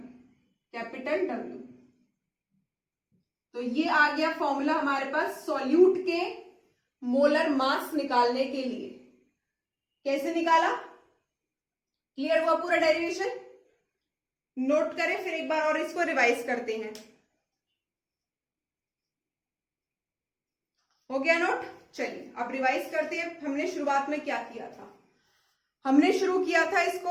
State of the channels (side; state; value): both; identical; correlation 1.00